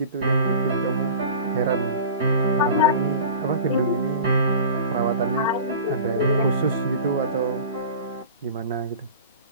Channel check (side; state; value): both; inverted; correlation -0.37